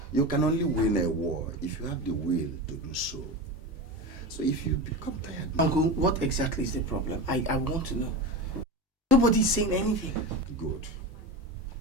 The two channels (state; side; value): normal; both; correlation 0.24